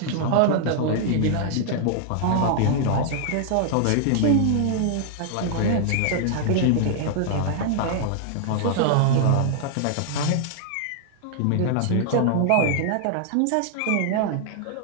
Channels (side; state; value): both; different; correlation -0.01